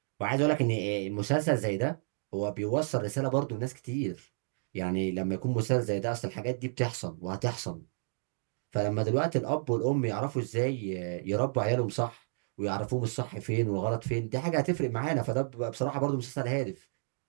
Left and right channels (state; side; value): silent; left; digital silence